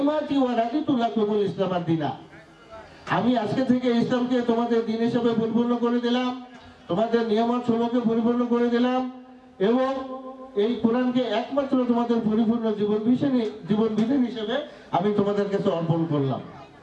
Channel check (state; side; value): identical; both; correlation 1.00